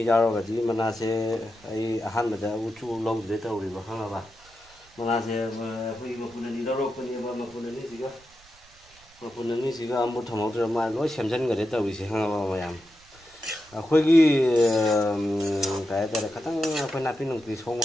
giao rồi thì mình là sẽ ai han mà đã uchu lâu rồi tao rồi mà khăng là bà mình là sẽ khi mà phụ nữ đi đâu rồi mà phụ nữ gì cơ mà phụ nữ gì cơ một thằng một mà nói xem chân người đấy tao bị sẽ khăng mà làm khôi cái khát tăng khôi nạp pin nông thủy sông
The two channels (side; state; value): right; noise; rumble, 27 dB below the sound